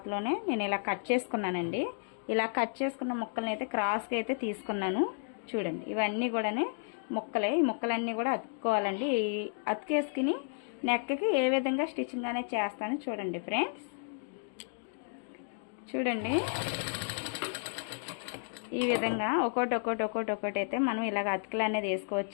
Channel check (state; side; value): silent; right; digital silence